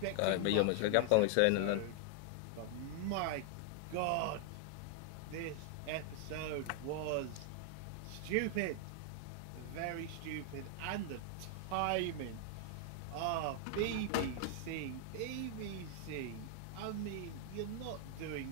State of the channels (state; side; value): different; both; correlation 0.00